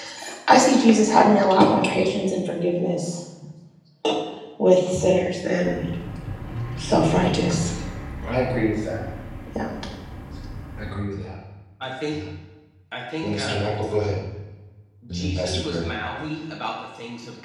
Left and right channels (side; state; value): both; identical; correlation 1.00